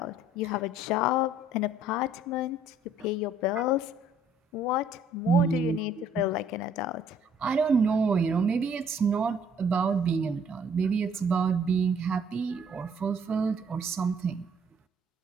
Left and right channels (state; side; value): normal; both; correlation 0.60